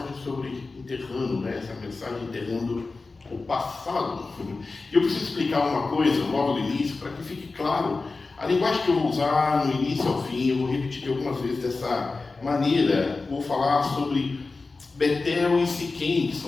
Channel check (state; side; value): quieter; right; 3.8 dB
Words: sobre enterrando, essa mensagem enterrando o passado. Eu preciso explicar uma coisa logo no início, para que fique claro. A linguagem que eu vou usar no início ao fim, eu vou repetir algumas vezes dessa maneira. Vou falar sobre Betel e Siquém, que